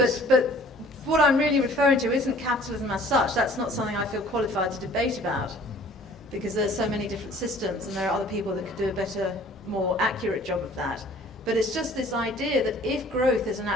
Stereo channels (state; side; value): normal; both; correlation 0.52